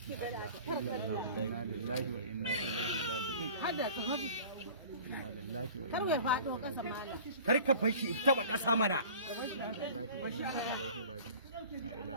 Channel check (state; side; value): inverted; both; correlation -0.43